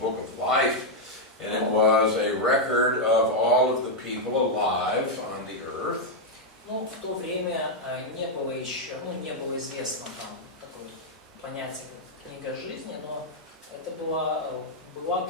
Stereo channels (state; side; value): normal; both; correlation -0.02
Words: of Life, and it was a record of all of the people alive on the earth. Ну, в то время не было еще, не было известно там такое понятие, как книга жизни, но это